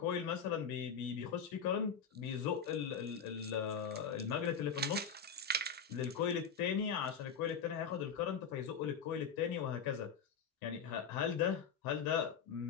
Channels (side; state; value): right; quieter; 6.4 dB